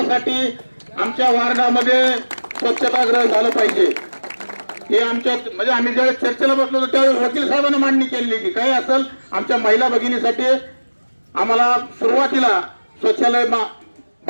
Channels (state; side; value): inverted; both; correlation -1.00